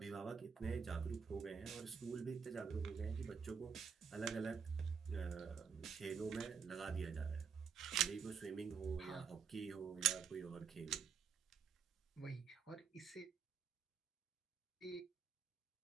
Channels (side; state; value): left; quieter; 6.3 dB